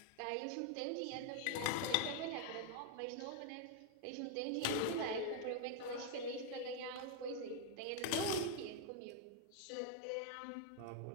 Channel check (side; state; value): both; different; correlation 0.00